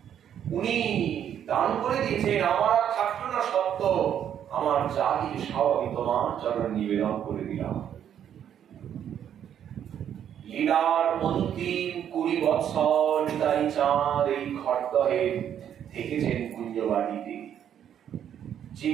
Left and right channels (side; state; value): left; quieter; 9.5 dB